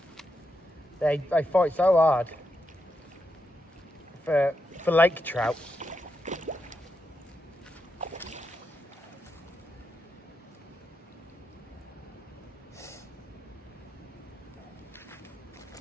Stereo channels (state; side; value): normal; both; correlation 0.85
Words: They fight so hard for lake trout.